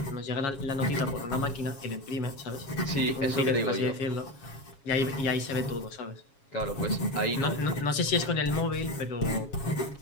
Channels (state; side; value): late; right; 7.2 ms